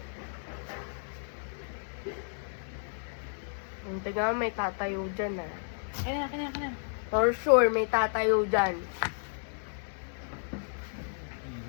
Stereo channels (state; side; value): silent; right; digital silence